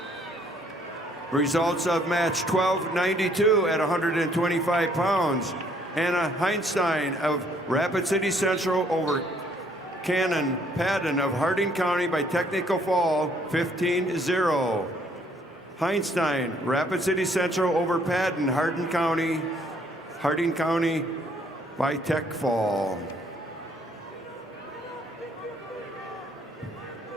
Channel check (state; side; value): normal; both; correlation 0.64